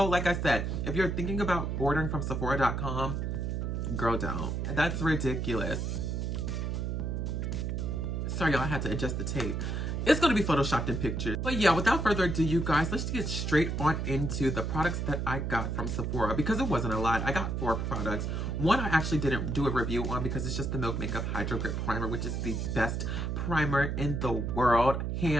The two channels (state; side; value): noise; right; hum, 1 dB below the sound